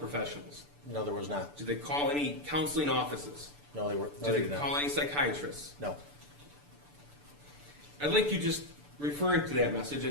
No, there was not. Did they call any counseling offices? No, they Did did they not. call any psychiatrists? No. I'd like you just referring to that message,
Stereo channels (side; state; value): left; late; 6.9 ms